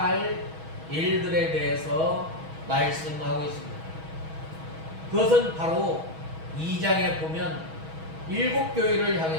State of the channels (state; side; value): late; left; 6.2 ms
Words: 일들에 대해서 말씀하고 있습니다. 그것은 바로 2장에 보면 일곱 교회를